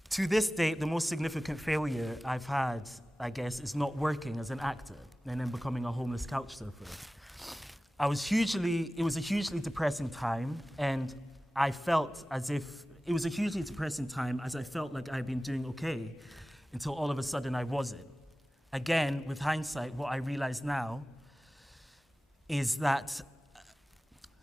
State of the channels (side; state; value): both; normal; correlation 0.96